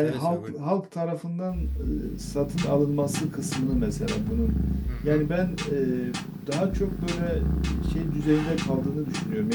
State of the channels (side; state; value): both; identical; correlation 1.00